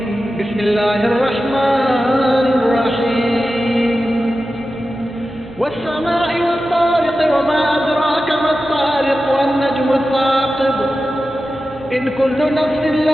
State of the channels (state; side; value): noise; right; hum, 21 dB below the sound